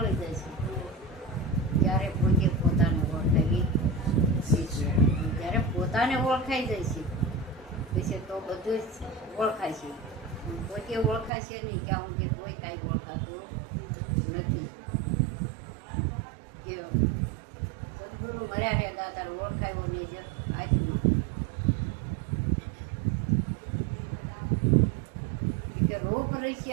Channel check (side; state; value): left; drops out; at 11.3 s